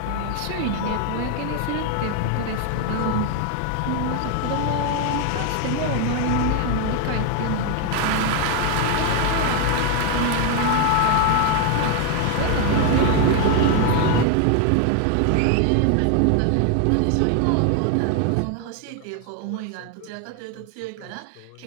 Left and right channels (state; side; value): different; both; correlation 0.01